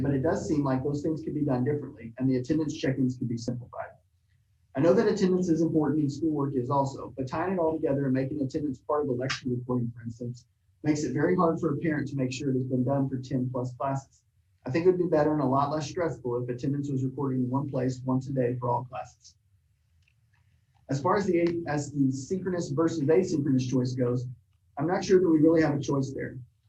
seem like those things could be done differently and the attendance check-ins could be simplified. I know that attendance is important and schoolwork is also, but tying it all together and making attendance part of the lecture recording, for instance, makes it very hard for a parent to make sure it has been done for 10 plus classes. I think it would be better and a lot less stressful if attendance was recorded in one place once a day for all classes. As far as the synchronous versus asynchronous choice goes, I'm not sure that we really have a choice there.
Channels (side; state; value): both; identical; correlation 1.00